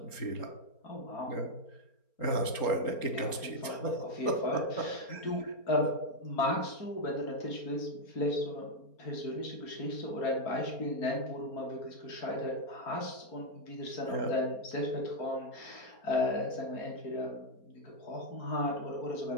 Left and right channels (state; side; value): late; right; 4.3 ms